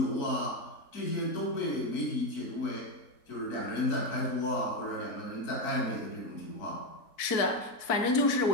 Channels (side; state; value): right; late; 4.6 ms